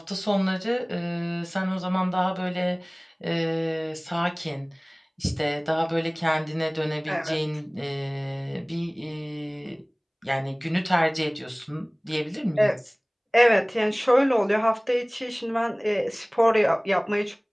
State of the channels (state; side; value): identical; both; correlation 1.00